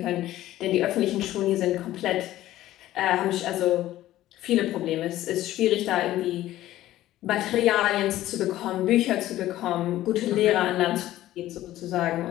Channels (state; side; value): quieter; right; 14.5 dB